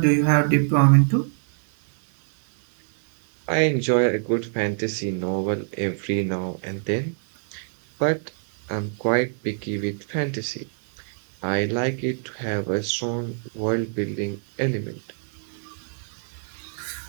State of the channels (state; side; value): silent; left; 62 dB below the other